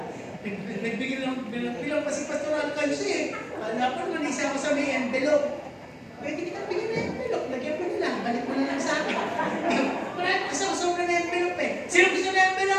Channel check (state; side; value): identical; both; correlation 1.00